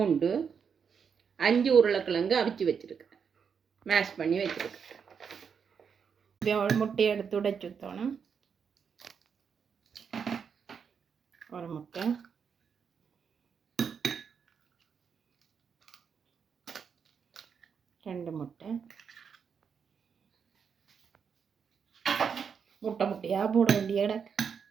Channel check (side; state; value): left; quieter; 6.6 dB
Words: 5 உருளைக்கிழங்கு அவிச்சு வச்சுருக்கிறேன், மேஷ் பண்ணி வச்சுருக்கிறேன். ஒரு முட்டையை எடுத்து உடைச்சு ஊற்றணும். ஒரு முட்டை, ரெண்டு முட்டை, முட்டையாக போட வேண்டிய இடம்.